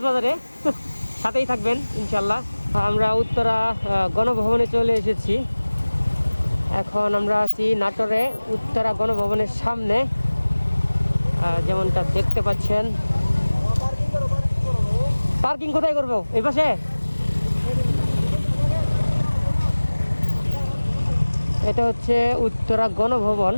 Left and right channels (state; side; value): inverted; both; correlation -1.00